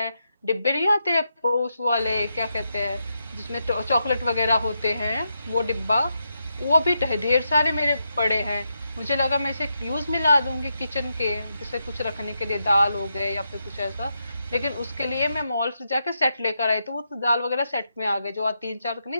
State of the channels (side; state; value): both; inverted; correlation -0.84